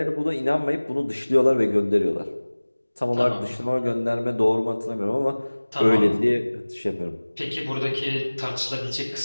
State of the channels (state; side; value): inverted; both; correlation -1.00